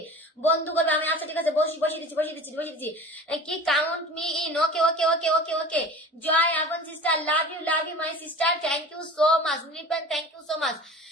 বন্ধু করবে আমি। আচ্ছা ঠিক আছে, বসিয়ে দিচ্ছি। কি count me in, okay. Joy আবন sister, love you my sister, thank you so much. Nirupan, thank you so much.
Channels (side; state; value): both; normal; correlation 0.39